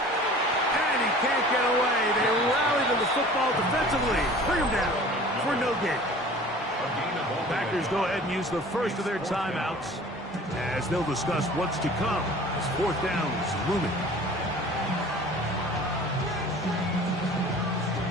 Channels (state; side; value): normal; both; correlation 0.45